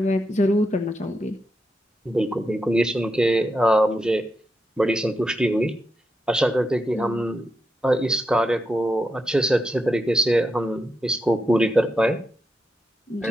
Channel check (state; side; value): normal; both; correlation 0.85